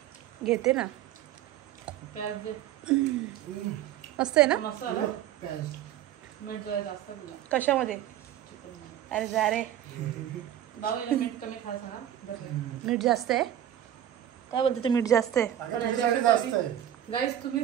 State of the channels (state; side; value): quieter; left; 11.4 dB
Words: घेते ना. मस्त आहे ना. कशामध्ये? अरे जा रे. मीठ जास्त आहे. काय बोलते ते? मीठ जास्त आहे. गाईस